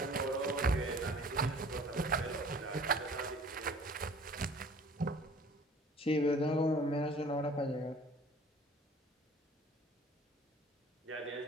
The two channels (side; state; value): both; normal; correlation 0.50